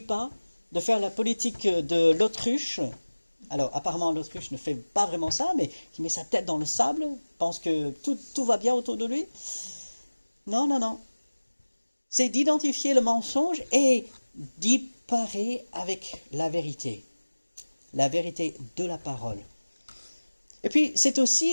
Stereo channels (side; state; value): both; inverted; correlation -1.00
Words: de faire la politique de l'autruche. Alors, apparemment, l'autruche ne fait pas vraiment ça, mais qui met sa tête dans le sable, pense que tout va bien autour de lui. Non. C'est d'identifier le mensonge et d'y parer avec la vérité de la parole. Et puis, c'est